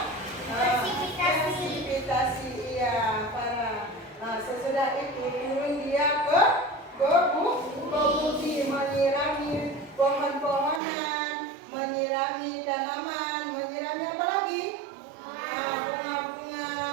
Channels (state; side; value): drops out; left; at 10.8 s